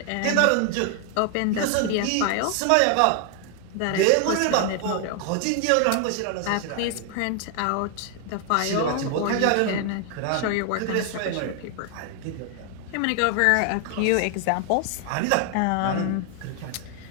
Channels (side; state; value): both; different; correlation 0.00